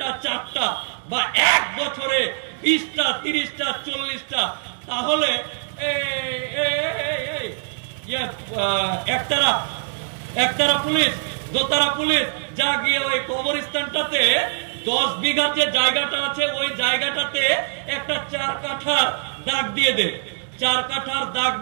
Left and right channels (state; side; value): silent; left; digital silence